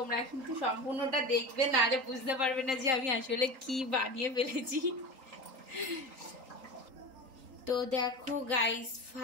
কিন্তু সম্পূর্ণটা দেখবে, না রে বুঝতে পারবে না যে আমি আসলে কি বানিয়ে ফেলেছি। তো দেখো গাইস,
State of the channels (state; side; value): late; left; 3.8 ms